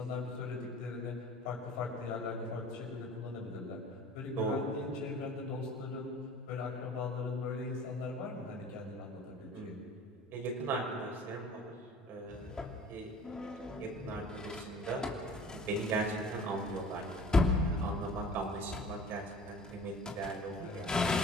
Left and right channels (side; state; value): both; normal; correlation 0.45